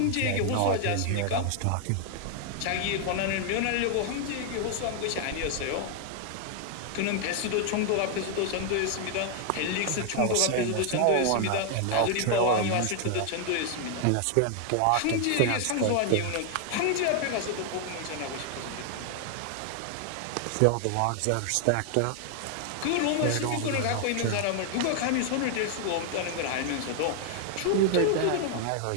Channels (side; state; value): both; different; correlation 0.00